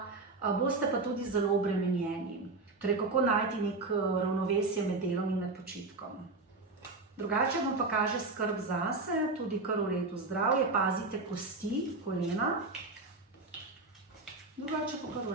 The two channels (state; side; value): quieter; left; 3.5 dB